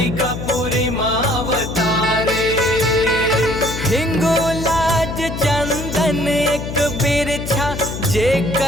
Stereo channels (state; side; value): noise; left; hum, 7 dB below the sound